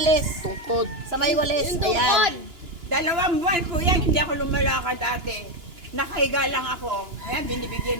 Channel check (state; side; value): late; left; 2.9 ms